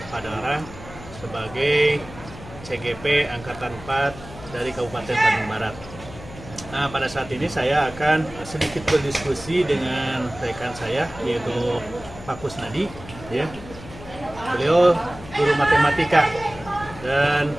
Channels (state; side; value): noise; left; hum, 16 dB below the sound